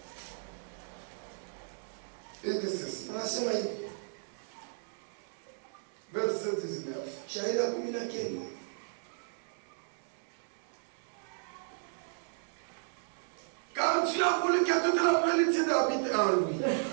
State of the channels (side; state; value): left; silent; digital silence